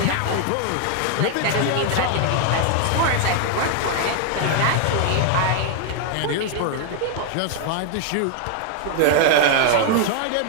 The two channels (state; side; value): different; both; correlation 0.00